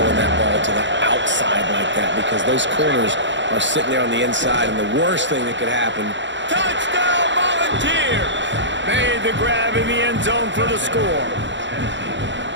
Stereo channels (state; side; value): late; left; 0.53 ms